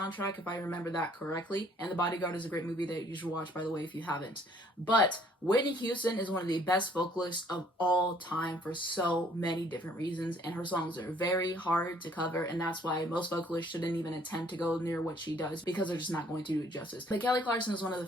if I remember that correctly. And The Bodyguard is a great movie that you should watch, by the way, if you haven't. But Whitney Houston is one of the best vocalists of all time for so many different reasons. And her songs are very hard to cover. And that's why most vocalists shouldn't even attempt to go near what she does, because they're just not going to do it justice. But Kelly Clarkson is one of the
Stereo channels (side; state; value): both; normal; correlation 0.60